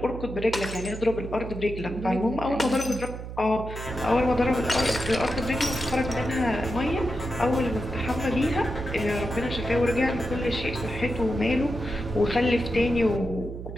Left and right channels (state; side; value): noise; right; hum, 9 dB below the sound